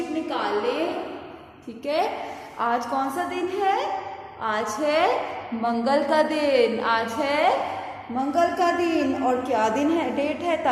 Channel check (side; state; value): both; identical; correlation 1.00